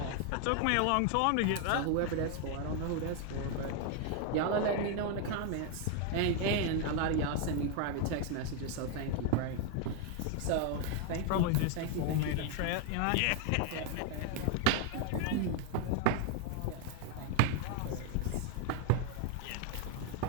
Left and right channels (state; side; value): different; both; correlation 0.00